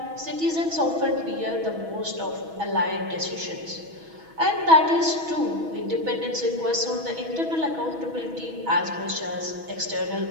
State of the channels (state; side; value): late; left; 6.2 ms